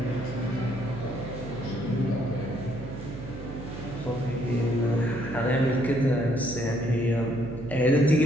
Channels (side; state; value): right; noise; hum, 10 dB below the sound